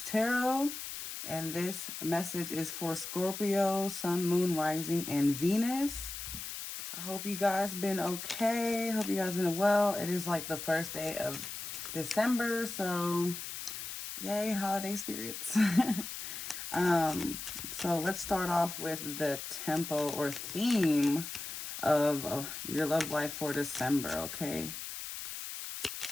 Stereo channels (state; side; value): noise; left; hiss, 7 dB below the sound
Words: Tarot, and this message is for Scorpio, Sun, Moon, Rising, and Venus. I hope you guys been okay. Hope you guys been well. It is like the first day of December, so yay, holiday spirits. So let's start off with the tempo or theme of your love life for December, okay?